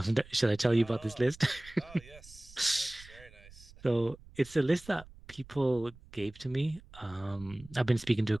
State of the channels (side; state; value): right; noise; rumble, 21 dB below the sound